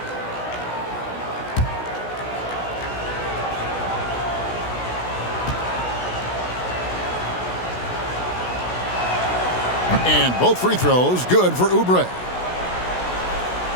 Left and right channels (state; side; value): late; right; 16 ms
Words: And both free throws good for Oubre.